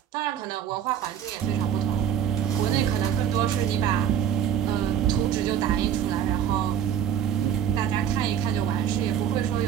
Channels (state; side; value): quieter; left; 9.3 dB